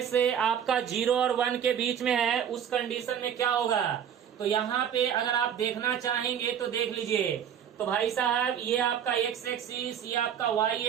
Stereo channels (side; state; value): left; quieter; 8.7 dB